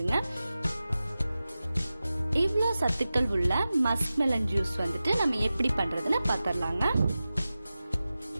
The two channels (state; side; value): inverted; both; correlation -0.95